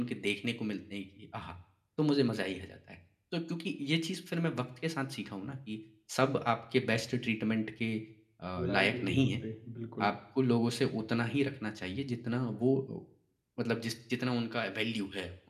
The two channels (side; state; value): both; identical; correlation 1.00